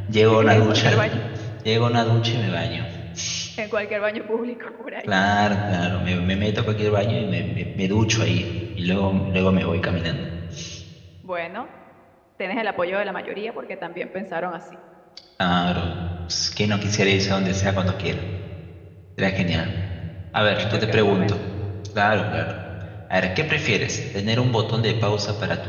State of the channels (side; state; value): both; identical; correlation 1.00